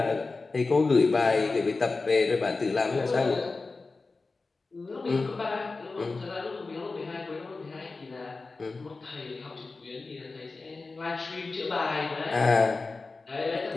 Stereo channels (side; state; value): right; quieter; 3.8 dB